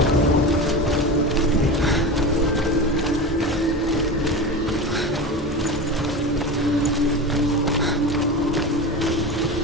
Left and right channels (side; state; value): both; normal; correlation 0.26